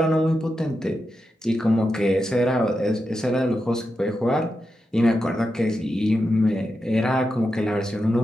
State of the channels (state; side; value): normal; both; correlation 0.88